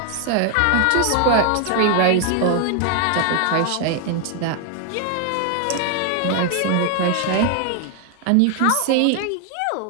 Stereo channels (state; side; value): different; both; correlation 0.00